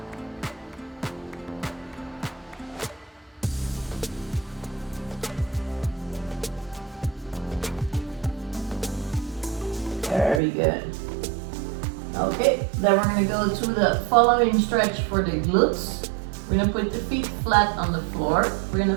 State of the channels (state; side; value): drops out; left; at 10.4 s